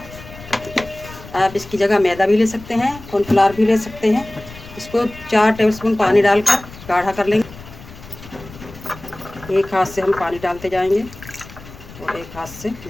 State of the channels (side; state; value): left; noise; rumble, 17 dB below the sound